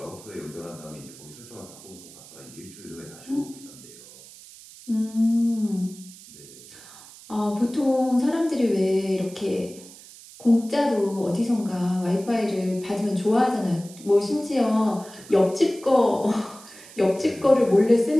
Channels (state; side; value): noise; right; hiss, 19 dB below the sound